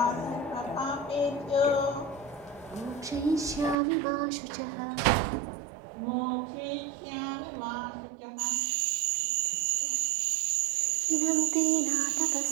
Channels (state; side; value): drops out; left; at 3.8 s